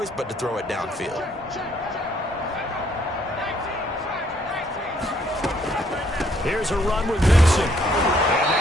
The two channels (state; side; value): normal; both; correlation 0.67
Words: but to throw it downfield. Here's a run with Vincent. And